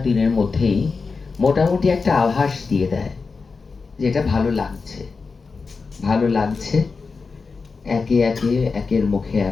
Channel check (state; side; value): quieter; right; 4.6 dB